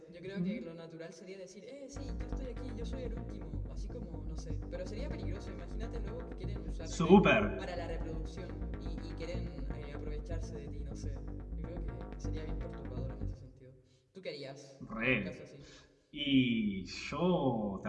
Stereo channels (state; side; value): identical; both; correlation 1.00